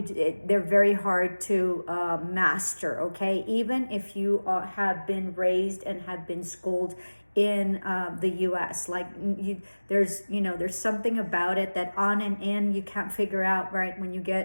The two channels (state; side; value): inverted; both; correlation -1.00